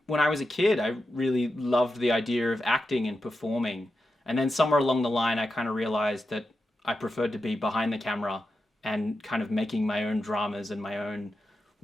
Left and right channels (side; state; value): both; normal; correlation 0.89